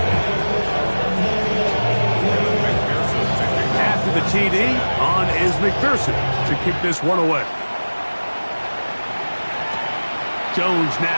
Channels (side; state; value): both; inverted; correlation -1.00